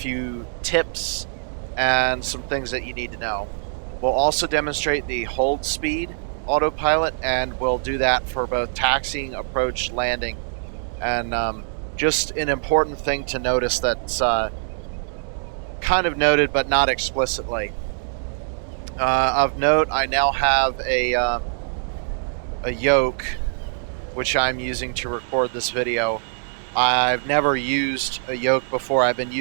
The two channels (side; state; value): left; silent; digital silence